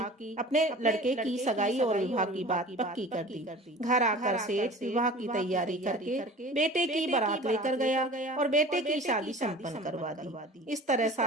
अपने लड़के की सगाई और विवाह की बात पक्की कर दी। घर आकर सेठ विवाह की तैयारी करके बेटे की बारात लेकर गया और बेटे की शादी संपन्न करवा दी। इस तरह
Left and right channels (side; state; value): both; normal; correlation 0.41